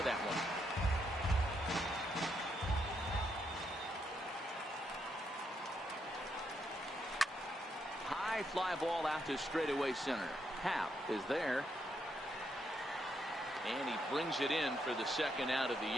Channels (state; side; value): normal; both; correlation 0.79